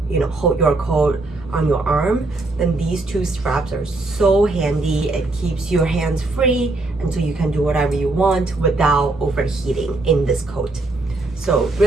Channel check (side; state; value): left; quieter; 3.0 dB